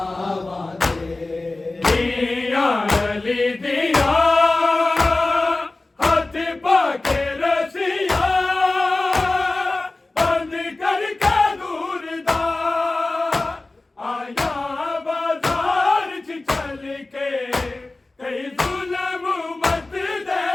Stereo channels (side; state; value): right; quieter; 3.1 dB